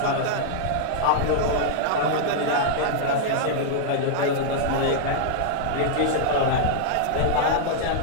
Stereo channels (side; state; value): both; different; correlation -0.01